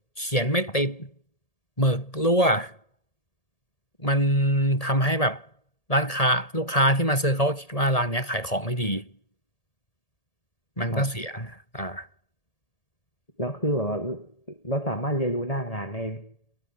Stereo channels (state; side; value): late; right; 1.8 ms